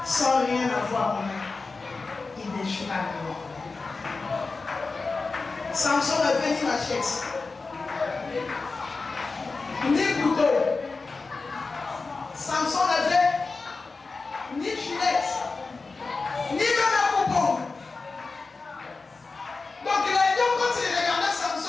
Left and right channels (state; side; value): quieter; right; 4.0 dB